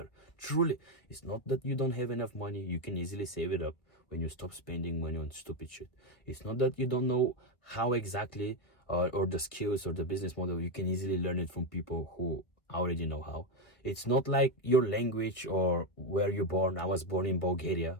Truly. It's not that you don't have enough money. You can easily save it up when you stop spending money on stupid shit. It's not that you don't know how exactly or the skills or the business model. You can easily learn it from people who already know how. It's not like your language or where you're born. I was born in Bulgaria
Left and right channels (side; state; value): right; late; 1.3 ms